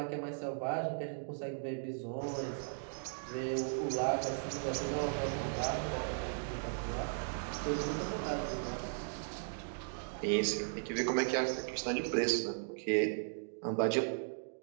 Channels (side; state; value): left; silent; digital silence